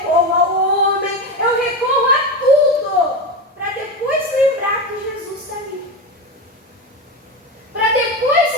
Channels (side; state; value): both; normal; correlation 0.18